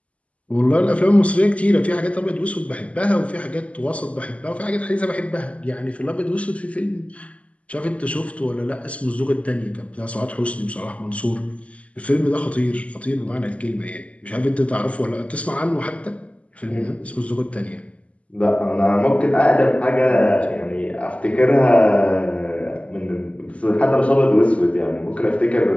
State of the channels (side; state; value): right; late; 0.065 ms